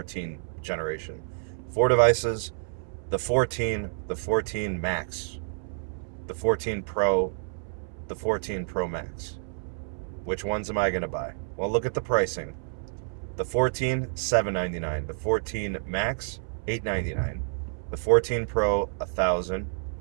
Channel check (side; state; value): left; silent; 59 dB below the other